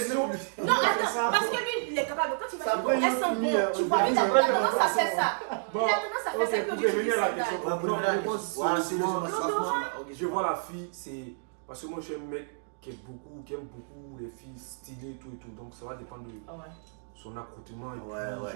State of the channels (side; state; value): left; silent; digital silence